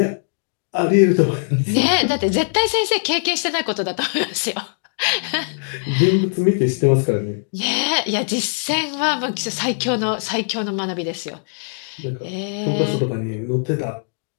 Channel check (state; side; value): silent; right; digital silence